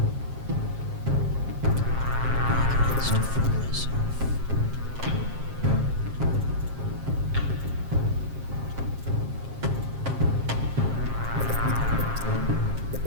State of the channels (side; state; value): left; late; 7.5 ms